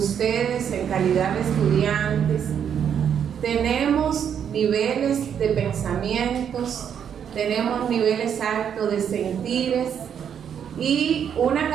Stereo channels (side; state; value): left; quieter; 8.3 dB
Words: en calidad de estudiantes, tenemos niveles de pensamientos, tenemos niveles altos de sentires y una